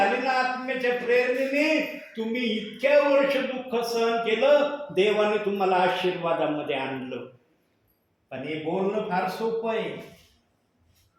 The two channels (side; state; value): both; identical; correlation 1.00